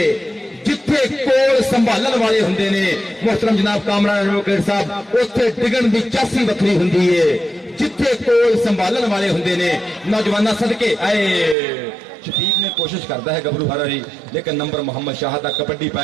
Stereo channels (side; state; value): left; drops out; at 11.6 s